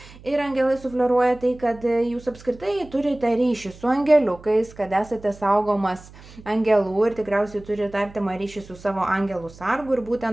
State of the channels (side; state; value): right; noise; hum, 20 dB below the sound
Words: Ir angelai sufleruoja tai, kad jūs apskritai turite ryšį su angeliukais, kad esate saugomas angelų ir tikriausiai turite artimą ryšį su savo angelų sargu. Ir